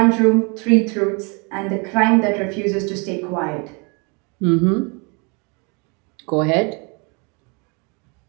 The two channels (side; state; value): left; quieter; 32.5 dB